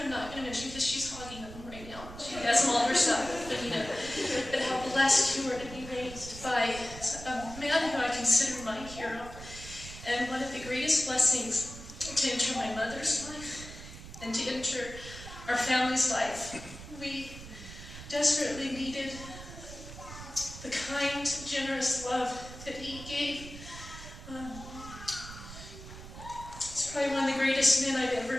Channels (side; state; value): right; noise; rumble, 13 dB below the sound